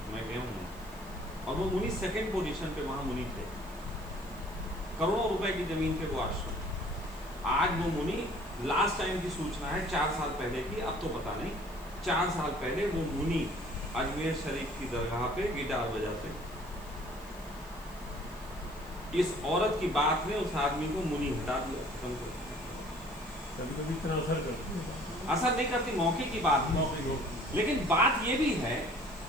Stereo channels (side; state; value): left; noise; hiss, 23 dB below the sound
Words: मैं गया हूँ, और वो मुनि 2nd पोजीशन पे वहाँ मुनि थे, करोड़ों रुपए की जमीन पे वो आश्रम। आज वो मुनि, लास्ट टाइम की सूचना है 4 साल पहले की, अब तो पता नहीं, 4 साल पहले वो मुनि अजमेर शरीफ की दरगाह पे गिटार बजाते। इस औरत की बात ने उस आदमी को मुनि हटा दिया, खत्म कर दिया। कभी इतना असर करती है, असर नहीं करती, मौके की बात है। लेकिन बात ये भी है,